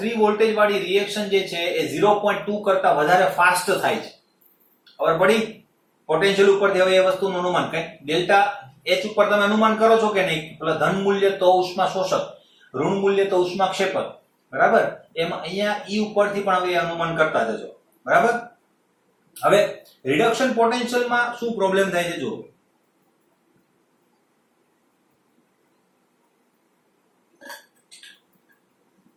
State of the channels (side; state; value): both; identical; correlation 1.00